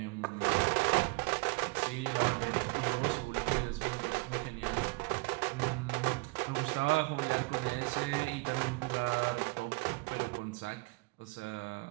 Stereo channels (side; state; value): left; quieter; 26.6 dB